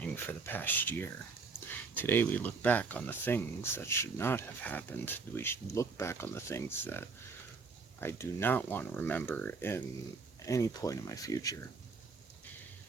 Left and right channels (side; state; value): left; quieter; 4.6 dB